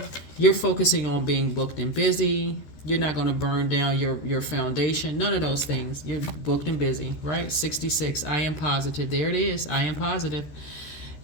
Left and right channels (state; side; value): late; right; 13 ms